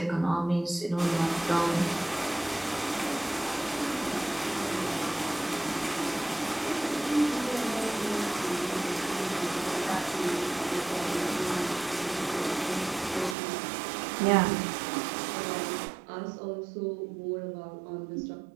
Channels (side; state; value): left; drops out; at 13.4 s